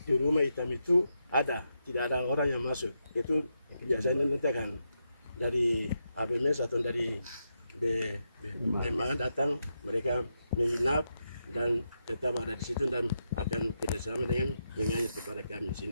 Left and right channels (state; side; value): inverted; both; correlation -0.84